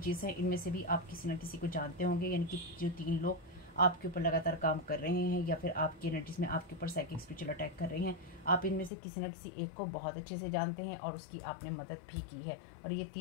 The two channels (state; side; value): drops out; right; at 8.9 s